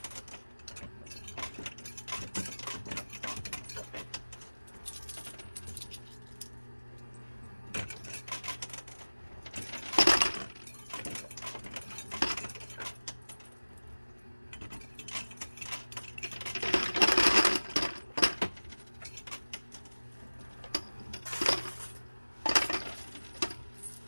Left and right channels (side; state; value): both; inverted; correlation -1.00